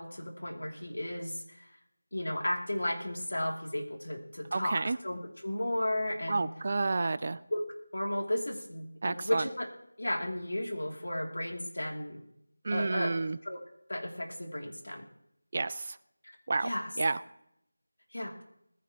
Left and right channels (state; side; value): inverted; both; correlation -0.97